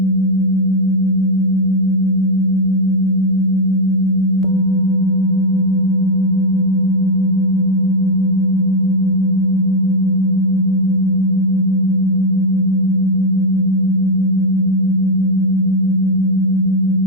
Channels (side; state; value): both; normal; correlation 0.01